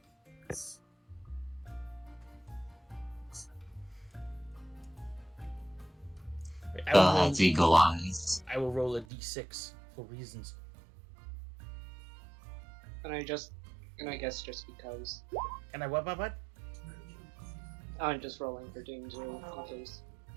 That's eagle eyes. I will roll a d6 for reasons. And I guess just because. And I what? I'm just rolling for danger in case.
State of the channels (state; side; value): drops out; left; at 9.1 s